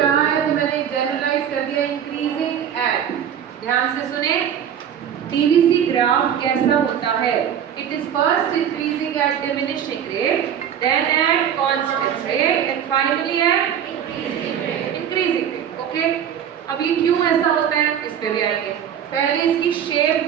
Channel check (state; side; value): quieter; left; 9.1 dB